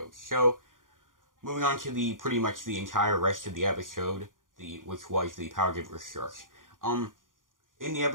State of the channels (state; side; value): late; left; 0.89 ms